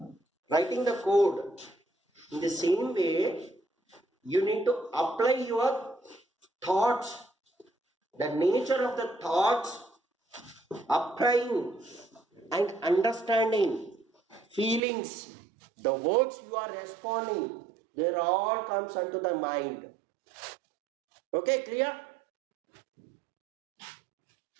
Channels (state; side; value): drops out; left; at 14.8 s